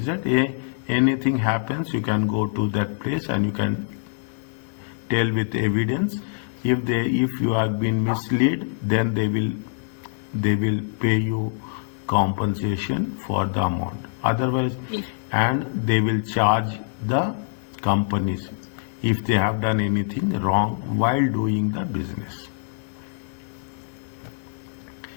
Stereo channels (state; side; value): silent; right; digital silence